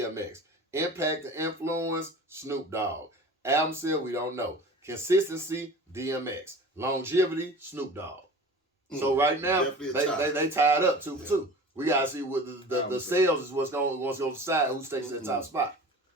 Impact and influence, Snoop Dogg. Album sale, we don't know. Consistency, DMX. Longevity, Snoop Dogg. So right now, they tied up 2 for 2. We gotta see what the sales is what's going to decide who takes that top spot.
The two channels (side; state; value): both; normal; correlation 0.39